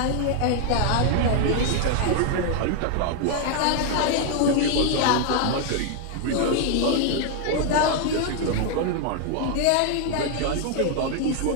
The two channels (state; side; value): different; both; correlation 0.00